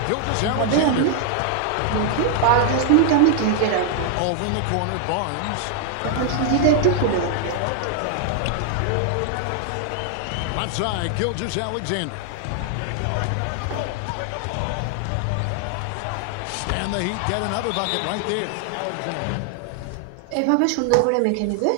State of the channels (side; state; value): both; different; correlation 0.00